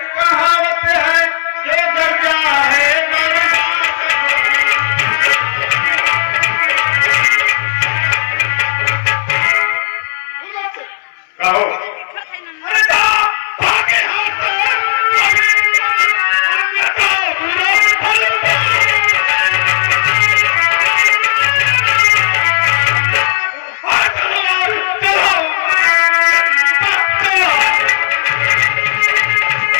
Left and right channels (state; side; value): silent; right; digital silence